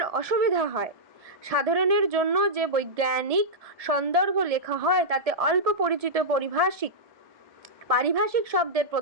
অসুবিধা হয়। সাধারণের জন্য যে বৈজ্ঞানিক সন্দর্ভ লেখা হয় তাতে অল্প পরিচিত পারিভাষিক শব্দের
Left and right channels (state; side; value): late; left; 1.7 ms